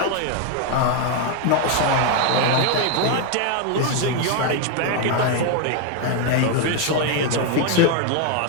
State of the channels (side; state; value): both; different; correlation 0.01